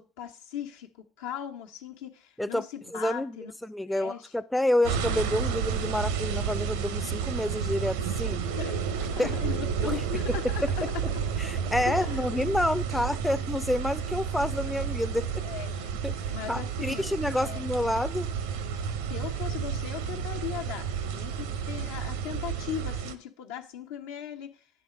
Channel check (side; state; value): both; normal; correlation 0.54